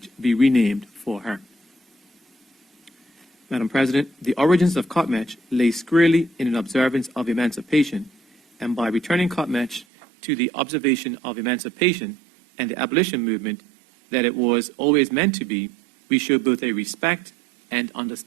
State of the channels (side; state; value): left; drops out; at 9.9 s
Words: be renamed for her. Madam President, the origins of Cutmatch lay squarely in an observance of emancipation, and by returning Cutmatch to the observation of emancipation and the abolition movement that it was always meant to be, we show both a respect and